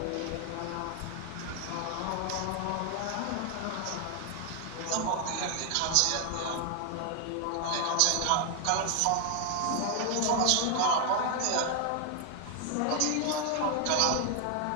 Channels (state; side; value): different; both; correlation 0.00